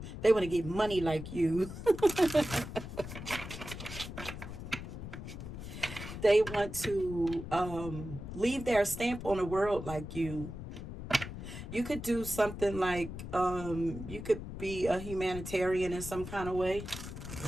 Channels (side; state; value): left; noise; rumble, 9 dB below the sound